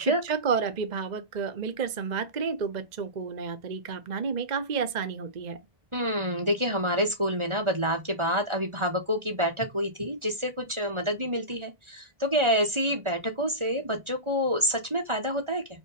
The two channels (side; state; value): left; late; 1.4 ms